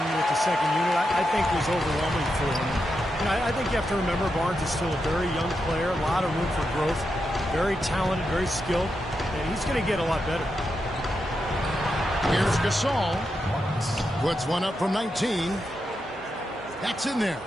with the second unit, I think was overwhelming for him. You know, I think you have to remember Barnes is still a very young player, a lot of room for growth, very talented, very skilled, and he's going to get a lot better. Here's Gasol. Puts one up from 19. That's in there.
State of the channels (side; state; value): both; normal; correlation 0.86